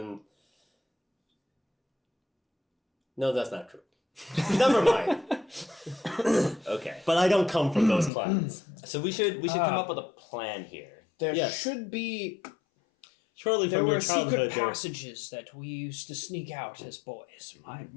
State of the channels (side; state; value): right; drops out; at 8.1 s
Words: No, that's not true. Never mind. Okay. But I don't come from those clans. So we should come up with a plan here. There Yes. should be. Surely There from were your secret childhood, there- passages that we used to sneak out as boys,